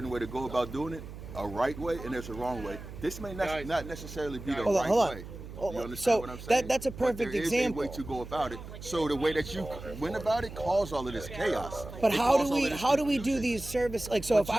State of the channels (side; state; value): right; noise; hum, 12 dB below the sound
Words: way to go about doing it, a right way, and there's a wrong way. This may not necessarily be the Hold on, right hold on. way. You understand so what I'm saying? that's a perfect but there example. is a way to go about it. So the way that you went about it caused all of this chaos. But It how caused do all we of this do confusion. these service like so? If